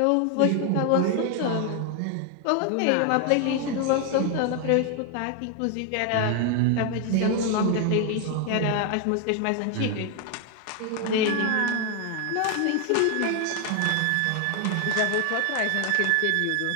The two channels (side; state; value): both; different; correlation 0.01